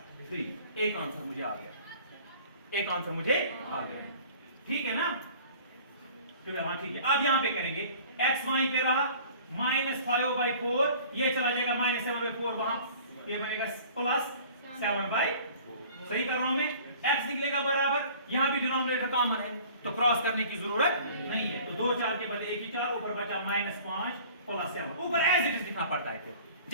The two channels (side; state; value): both; inverted; correlation -0.48